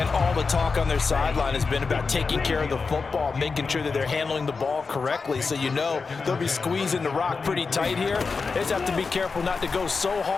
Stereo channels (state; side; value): quieter; right; 4.7 dB